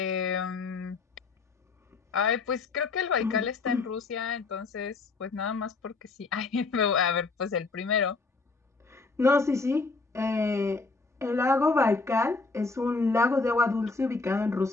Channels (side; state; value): right; quieter; 4.0 dB